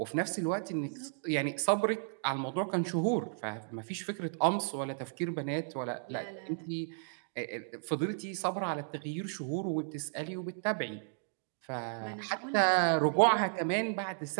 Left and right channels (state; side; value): silent; left; digital silence